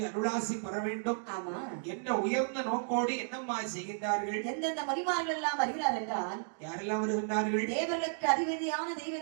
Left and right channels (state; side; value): silent; left; digital silence